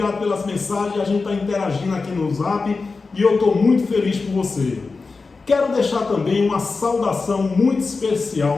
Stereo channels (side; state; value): right; quieter; 4.2 dB